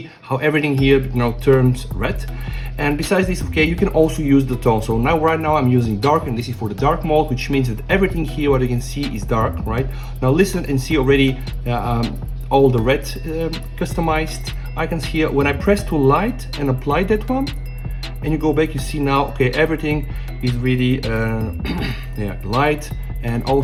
how everything here, you know, turns red. And besides this, okay, you can also use the tone. So now right now I'm using dark, and this is for the dark mode, which means that everything here, what you can see, is dark, right? Now listen and see already all the red customized icons here. When I press to light and apply that one, and you go back, you see now, okay, everything is really yeah, light. And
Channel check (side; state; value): both; identical; correlation 1.00